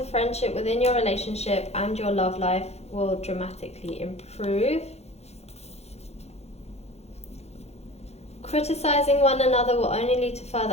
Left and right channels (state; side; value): late; right; 0.31 ms